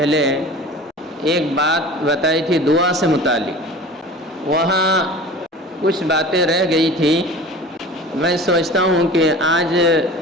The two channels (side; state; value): both; normal; correlation 0.39